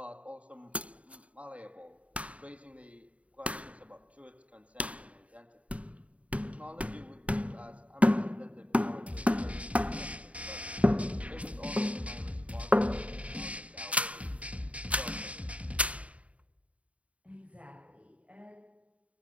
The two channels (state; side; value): late; left; 0.066 ms